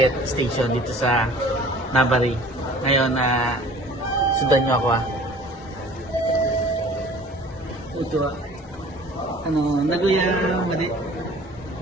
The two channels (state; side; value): normal; both; correlation 0.48